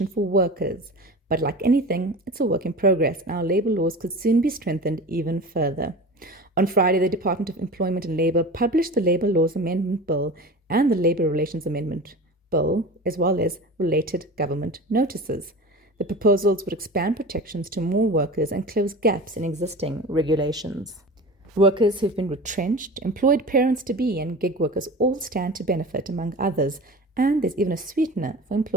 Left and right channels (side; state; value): both; normal; correlation 0.34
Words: for workers. But like anything, it's a work in progress, and our labor laws could soon be strengthened even further. On Friday, the Department of Employment and Labour published the Labour Laws Amendment Bill and the Labour Relations Amendment Bill, as well as related government notices. The proposals would expand protections to more workers and close gaps in existing regulations. Workers who've been retrenched, employed parents-to-be, and gig workers all stand to benefit, among others, and there's even a sweetener for